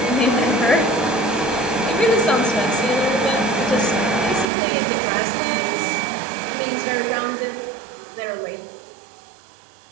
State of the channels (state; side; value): drops out; left; at 4.5 s